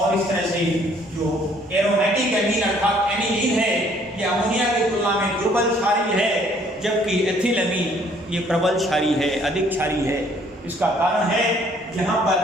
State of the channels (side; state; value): both; normal; correlation 0.61